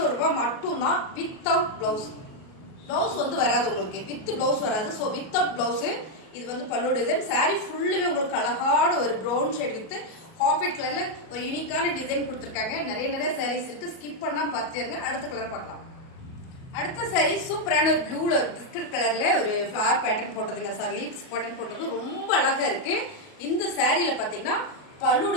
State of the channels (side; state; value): right; late; 37 ms